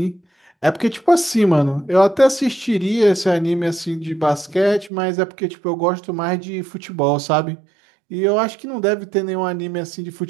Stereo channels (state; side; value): drops out; left; at 4.9 s